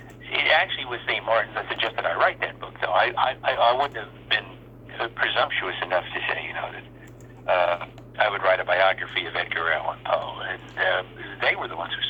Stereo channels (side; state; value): both; identical; correlation 1.00